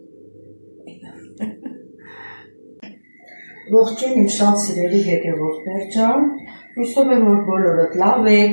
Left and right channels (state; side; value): inverted; both; correlation -1.00